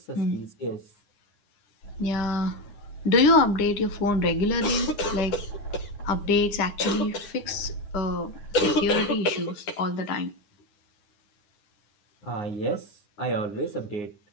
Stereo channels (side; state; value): right; late; 9.8 ms